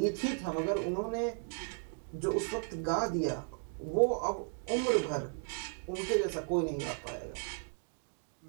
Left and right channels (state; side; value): silent; left; 54 dB below the other